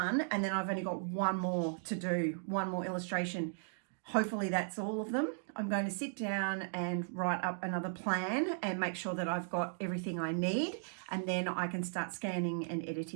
And then I've only got one more to do, one more illustration. Hopefully that's all of them. I'm going to sit down and write up another plan and make sure that I've got everything I need, and then I can start scanning and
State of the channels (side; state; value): left; silent; digital silence